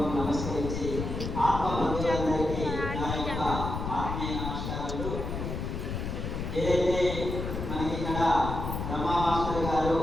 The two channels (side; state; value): left; noise; rumble, 4 dB below the sound